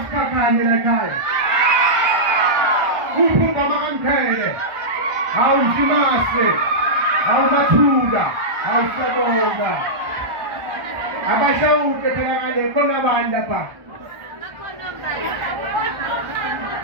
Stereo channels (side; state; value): left; late; 1.3 ms